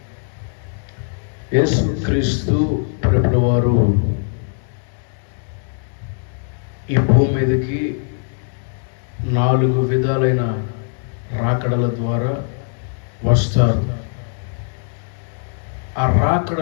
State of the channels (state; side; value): silent; right; digital silence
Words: యేసుక్రీస్తు ప్రభుల వారు ఈ భూమి మీదకి 4 విధాలైన రాకడల ద్వారా వస్తారు. ఆ